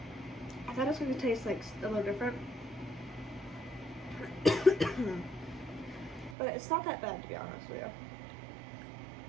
I thought it was going to taste like a little different, but it's not that bad to be honest with you.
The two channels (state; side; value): drops out; left; at 6.4 s